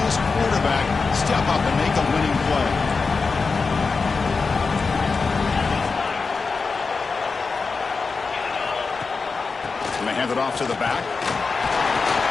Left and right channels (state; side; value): quieter; right; 4.5 dB